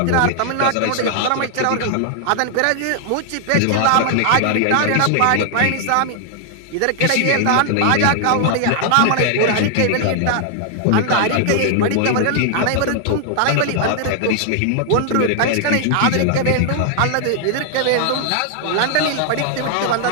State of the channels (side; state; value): both; different; correlation 0.00